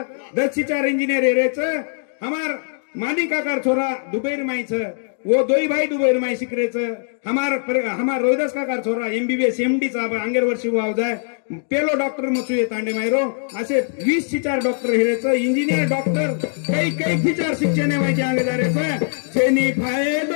10 शिचार इंजीनियर हेरेच हमार मानी काकार छोरा दुबईर माईच वो दोई भाई दुबईर माई शिकरेच हमार रोहिदास काकार छोरा एमबीबीएस एमडी चा अंगेर वर्षी वाव जाय पेलो डॉक्टर मचू ये तांडे मायरो असे 20 शिचार डॉक्टर हेरेच इंजीनियर डॉक्टर कई कई शिचार शिक्षण माहिती अंगे जारेच छेनी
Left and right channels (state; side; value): silent; right; 60 dB below the other